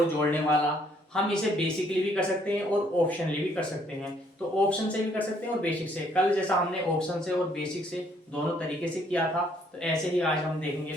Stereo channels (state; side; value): normal; both; correlation 0.66